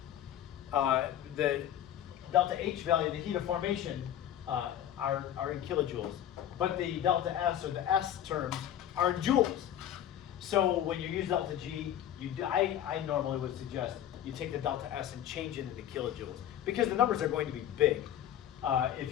delta H value, the heat of formation, are in kilojoules, but the delta S or the S terms are in joules. So when you use delta G, I normally would suggest you take the delta S and change it into kilojoules, because the numbers are going to be big if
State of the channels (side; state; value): right; quieter; 11.0 dB